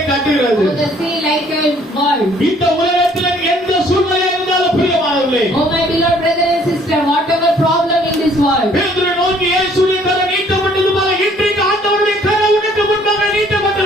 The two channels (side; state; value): both; normal; correlation 0.60